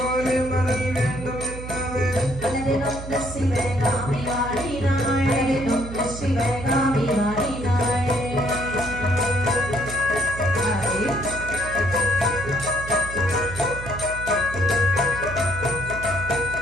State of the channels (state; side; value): noise; right; hum, 10 dB below the sound